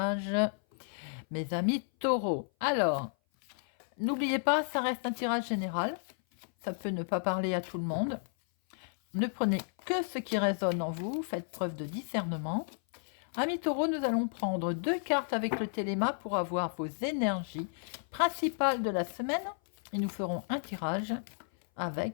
mes amis taureaux. Alors, n'oubliez pas, ça reste un tirage général, ça peut ne pas parler à tout le monde. Ne prenez que ce qui résonne en vous, faites preuve de discernement. Amis taureaux, nous allons prendre 2 cartes avec le téléma pour avoir vos énergies principales de la semaine. Et nous ferons un tirage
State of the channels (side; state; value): right; silent; 56 dB below the other